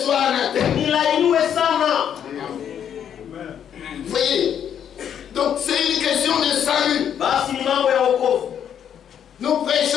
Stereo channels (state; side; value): quieter; right; 9.0 dB